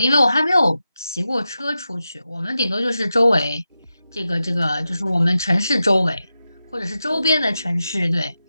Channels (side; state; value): both; inverted; correlation -0.91